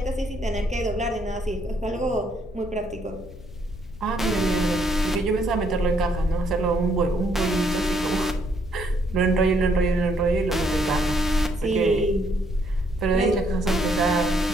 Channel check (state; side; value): noise; left; hum, 19 dB below the sound